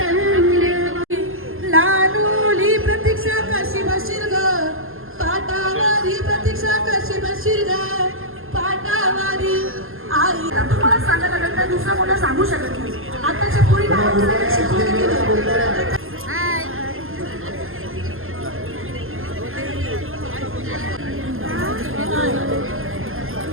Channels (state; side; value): late; left; 0.60 ms